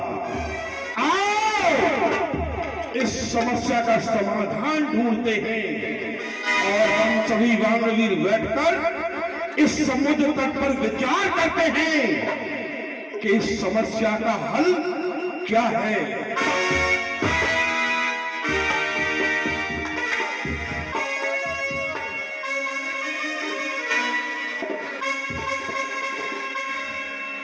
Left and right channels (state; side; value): identical; both; correlation 1.00